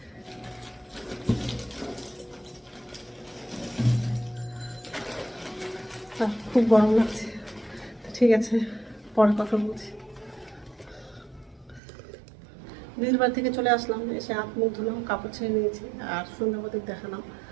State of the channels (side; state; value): left; drops out; at 11.8 s